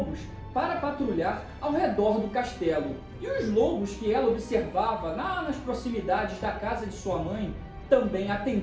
para patrulhar ao redor do castelo. E os lobos que ela observava lá nas proximidades da casa de sua mãe também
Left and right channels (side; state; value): both; identical; correlation 1.00